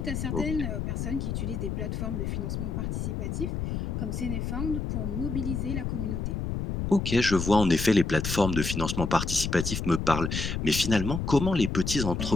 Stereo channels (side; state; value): left; noise; rumble, 3 dB below the sound